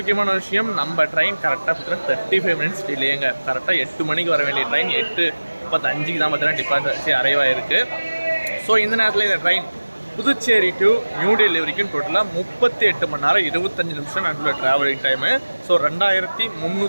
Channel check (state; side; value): inverted; both; correlation -1.00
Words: விஷயம், நம்ம ட்ரெயின் கரெக்டாக பார்த்தீங்கன்னா 35 மினிட்ஸ் டிலேங்க. கரெக்டாக 8 மணிக்கு வர வேண்டிய ட்ரெயின் 8:35 தான் பார்த்தீங்கன்னா டிபார்ச்சர் அரைவ் ஆயிருக்கு. ஸோ இந்த நேரத்தில் இந்த ட்ரெயின் புதுச்சேரி டு நியூ டெல்லி வரைக்கும் டோட்டலாக 38 மணி நேரம் 25 நிமிஷம் நடுவில் ட்ராவலிங் டைமு. ஸோ